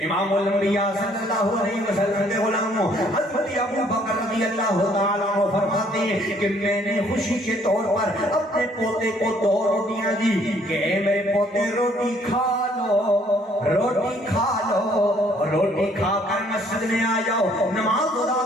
امام الانبیاء صلی اللہ علیہ وسلم کے غلاموں حضرت ابو بکر رضی اللہ تعالیٰ عنہ فرماتے ہیں کہ میں نے خوشی کے طور پر اپنے پوتے کو 2 روٹیاں دی کہ اے میرے پوتے روٹی کھا لو، روٹی کھا لو، روٹی کھا کر مسجد میں آ جاؤ، نماز ادا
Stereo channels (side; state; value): both; normal; correlation 0.63